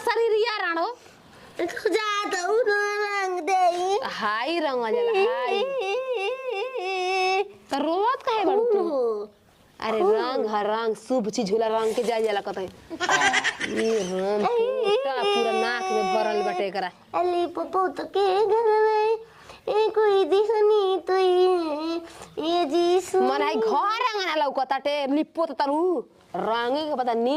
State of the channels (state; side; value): identical; both; correlation 1.00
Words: शरीरिया राणो तू जा दऊ ना रंग दे हाई रंग जला हाई तो रोवत काहे बड़ू तू अरे रंग शुभ चीज होला रंग के जाय जाला कतई ये राम पूरा नाक में भरल बटे करा अली पप्पू तो के घर में कोई दिखनी तो ये जीसु मन है घर रंगना लौकताटे लिपो त तरु रंगे के पता